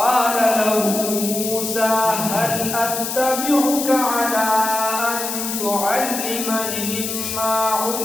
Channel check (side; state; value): left; noise; hiss, 4 dB below the sound